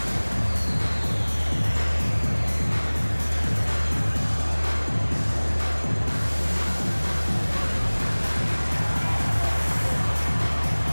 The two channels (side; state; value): both; inverted; correlation -1.00